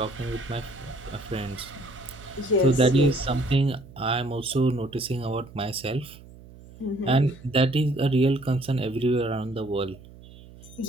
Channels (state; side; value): noise; right; hum, 20 dB below the sound